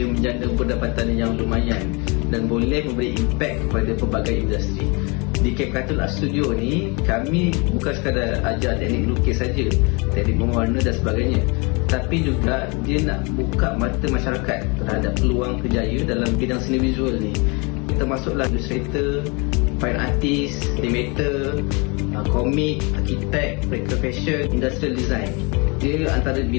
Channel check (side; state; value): right; quieter; 30.1 dB